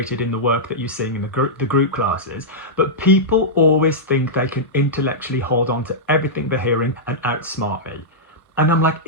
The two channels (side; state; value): both; normal; correlation -0.11